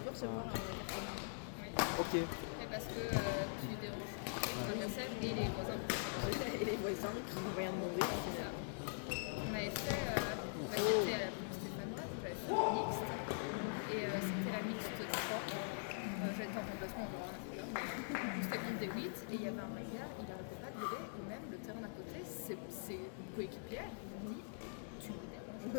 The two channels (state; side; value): silent; right; digital silence